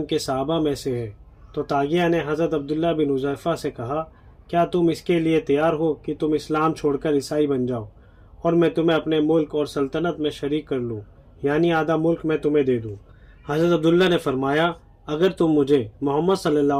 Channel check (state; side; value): identical; both; correlation 1.00